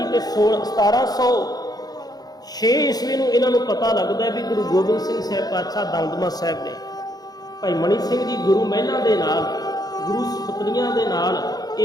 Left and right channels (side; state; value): right; late; 0.19 ms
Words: ਤੇ 1706 ਈਸਵੀ ਨੂੰ ਇਹਨਾਂ ਨੂੰ ਪਤਾ ਲੱਗਦਾ ਵੀ ਗੁਰੂ ਗੋਬਿੰਦ ਸਿੰਘ ਸਾਹਿਬ ਪਾਤਸ਼ਾਹ ਦਮਦਮਾ ਸਾਹਿਬ ਨੇ। ਭਾਈ ਮਨੀ ਸਿੰਘ ਜੀ ਗੁਰੂ ਮਹਿਲਾਂ ਦੇ ਨਾਲ, ਗੁਰੂ ਸੁਪਤਨੀਆਂ ਦੇ ਨਾਲ